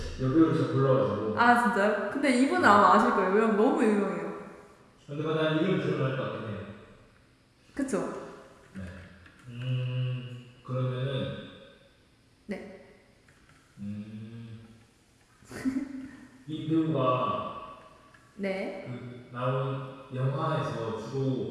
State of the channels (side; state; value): both; identical; correlation 1.00